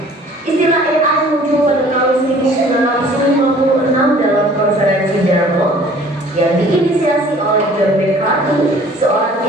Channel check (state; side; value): normal; both; correlation 0.52